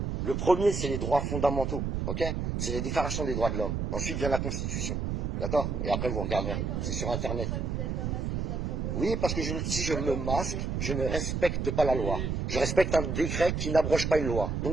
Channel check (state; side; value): noise; right; rumble, 1 dB below the sound